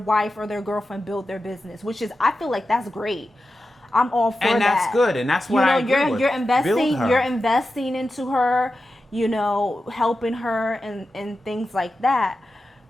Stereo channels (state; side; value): normal; both; correlation 0.91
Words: or their girlfriend build their business, which is, I feel like that's great. I'm all for that. And that's good, and that's what I agree with. You're investing into her, helping her and things like that.